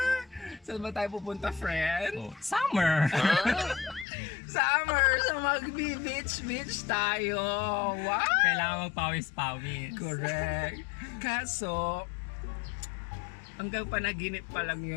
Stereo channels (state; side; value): drops out; right; at 4.0 s